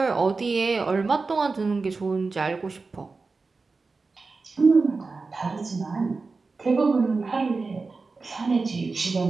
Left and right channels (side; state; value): left; quieter; 4.1 dB